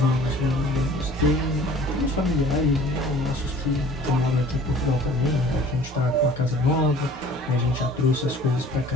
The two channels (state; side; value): normal; both; correlation 0.49